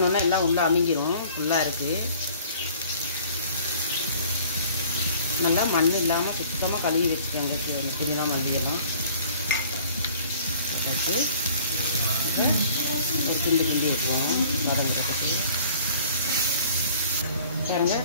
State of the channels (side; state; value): both; inverted; correlation -0.52